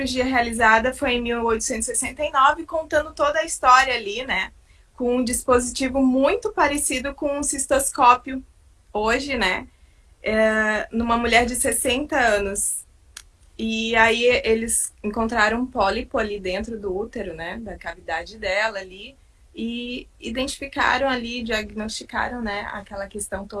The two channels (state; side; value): identical; both; correlation 1.00